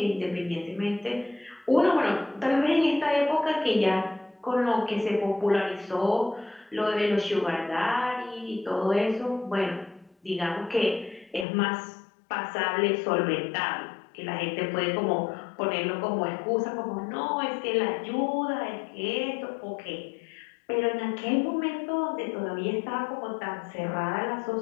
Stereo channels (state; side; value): drops out; right; at 11.5 s